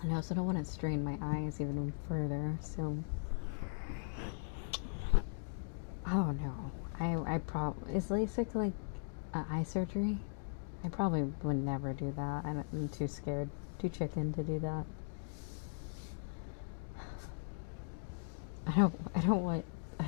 And I also don't want to strain my eyes even further, so I don't know. I probably, is LASIK like eye surgery? I probably would never do that. I'm too scared, too chicken to do that. I don't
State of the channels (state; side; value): silent; right; digital silence